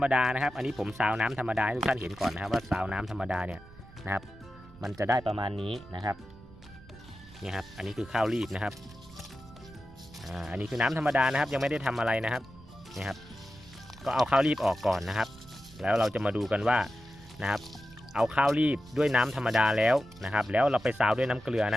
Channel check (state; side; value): noise; right; rumble, 21 dB below the sound